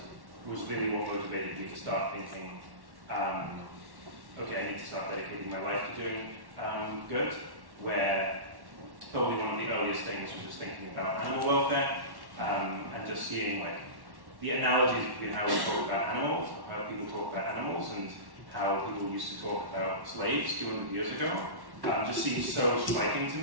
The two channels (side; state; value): left; late; 1.1 ms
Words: was really what motivated me to start thinking, okay, I need to start dedicating my life to doing good, where probably one of the earliest things was just thinking about animal welfare, and just seeing the analogies between how we talk about animals, how people talk about animals, and how people used to talk about slaves 200 years ago, just seems so striking to